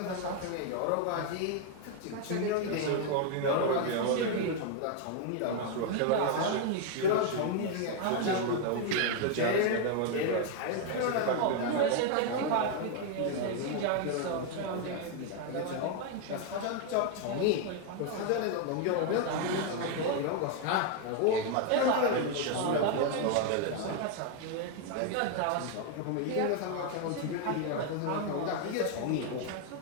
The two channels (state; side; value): different; both; correlation 0.00